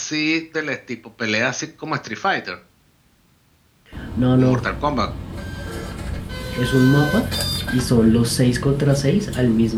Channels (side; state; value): both; identical; correlation 1.00